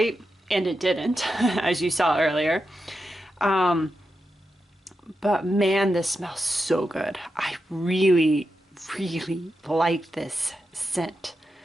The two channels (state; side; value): normal; both; correlation 0.88